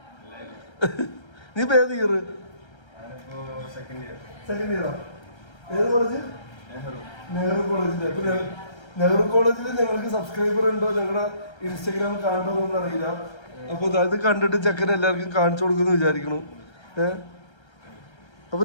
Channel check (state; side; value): late; right; 1.3 ms